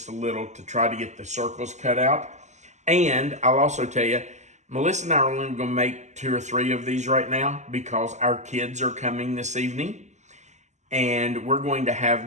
a little to try to get the circles cut out. And I'll also tell you, Melissa and I are only going to make 2 or 3 of these right now because our kids are coming this evening. And we're going to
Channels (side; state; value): left; late; 0.34 ms